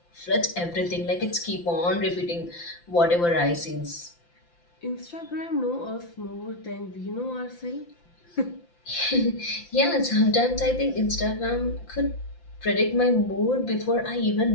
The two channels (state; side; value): late; right; 5.8 ms